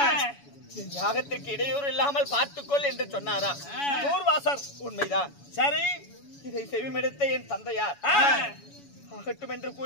என் யாகத்திற்கு இடையூறு இல்லாமல் பார்த்துக்கொள் என்று சொன்னாரா. தூர்வாசர் உண்மைதான். சரி, இதை செவிமெடுத்த என் தந்தையார் ஆகட்டும் என்று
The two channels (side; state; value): right; late; 7.1 ms